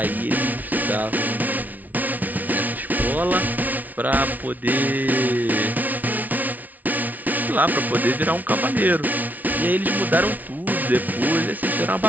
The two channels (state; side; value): late; left; 0.077 ms